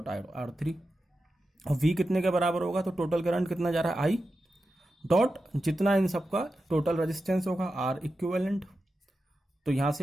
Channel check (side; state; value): both; normal; correlation 0.91